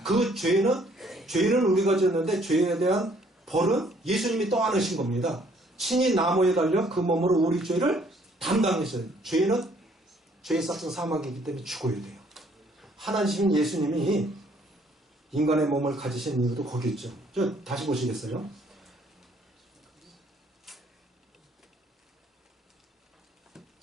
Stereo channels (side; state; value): both; normal; correlation 0.63